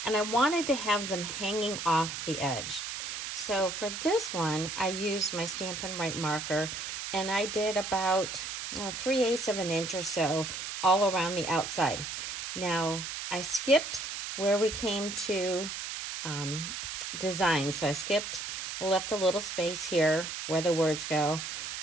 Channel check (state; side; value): noise; right; hiss, 6 dB below the sound